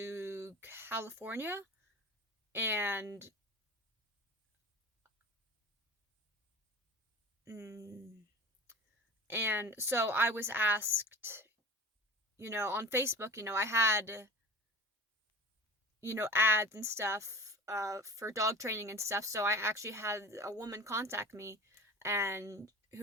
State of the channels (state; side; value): normal; both; correlation 0.35